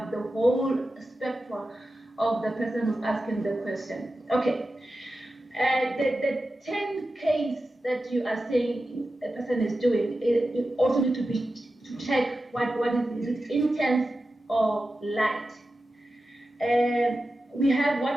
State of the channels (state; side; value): normal; both; correlation 0.92